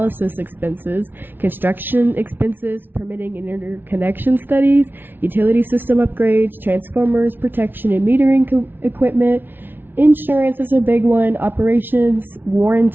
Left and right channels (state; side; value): late; left; 0.10 ms